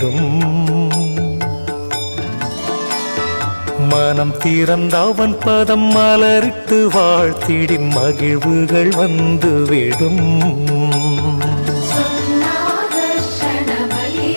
மனம் திறந்தவன் பதம் மலரிட்டு வாழ்த்திடின் மகிழ்வுகள் வந்துவிடும்.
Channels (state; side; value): inverted; both; correlation -1.00